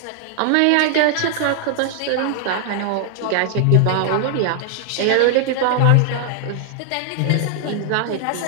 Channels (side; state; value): both; different; correlation 0.00